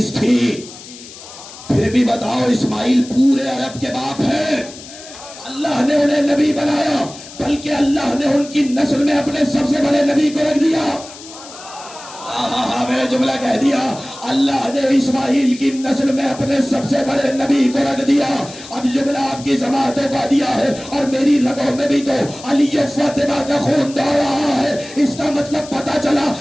تھی۔ پھر بھی بتاؤ اسماعیل پورے عرب کے باپ ہیں، اللہ نے انہیں نبی بنایا، بلکہ اللہ نے ان کی نسل میں اپنے سب سے بڑے نبی کو رکھ دیا۔ میں نے جملہ کہہ دیا، اللہ نے اسماعیل کی نسل میں اپنے سب سے بڑے نبی کو رکھ دیا۔ اب جملہ آپ کی سماعتوں کا دیا ہے اور میری رگوں میں بھی تو علی و فاطمہ کا خون دوڑ رہا ہے۔ اس کا مطلب پتا چلا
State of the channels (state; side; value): noise; left; hiss, 16 dB below the sound